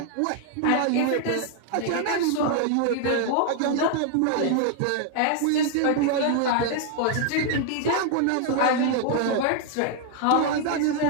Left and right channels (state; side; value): different; both; correlation 0.00